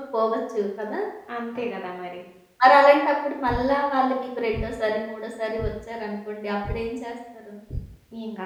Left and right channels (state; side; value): identical; both; correlation 1.00